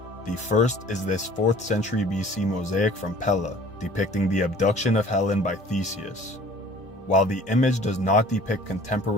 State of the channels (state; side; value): normal; both; correlation 0.49